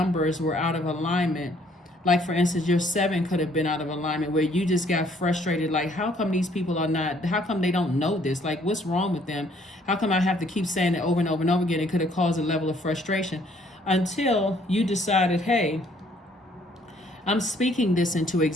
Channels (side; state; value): both; normal; correlation 0.63